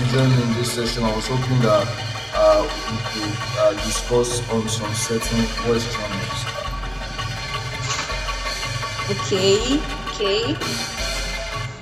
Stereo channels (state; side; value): identical; both; correlation 1.00